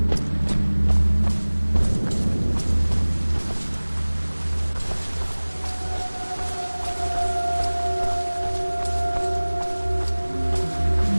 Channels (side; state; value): both; inverted; correlation -1.00